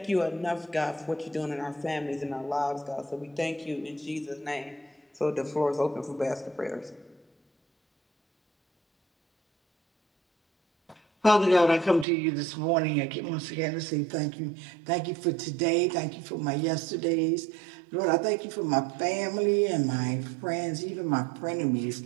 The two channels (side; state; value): left; drops out; at 12.1 s